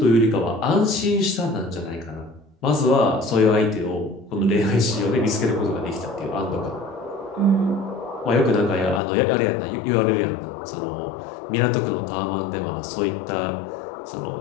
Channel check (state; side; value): drops out; right; at 9.0 s